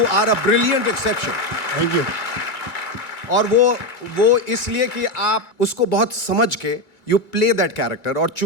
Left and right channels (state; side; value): late; right; 2.0 ms